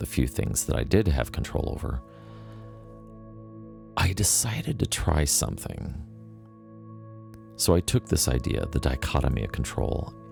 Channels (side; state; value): both; identical; correlation 1.00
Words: few things that I did have control over, I decided to try something. So I took this idea, the dichotomy of control,